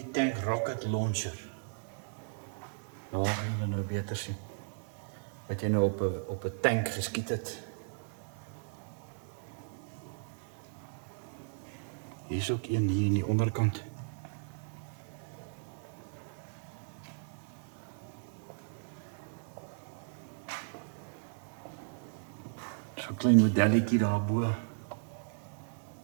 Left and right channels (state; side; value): silent; left; digital silence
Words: rocket launcher. Nou gaan julle nou beter sien. Wat jy nou op 'n tank geskiet het. Hier is ook een hier in die onderkant. So 'n klein modelletjie daarbo.